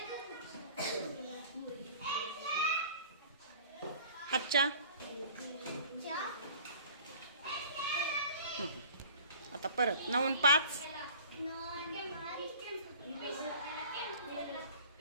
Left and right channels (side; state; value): both; inverted; correlation -0.46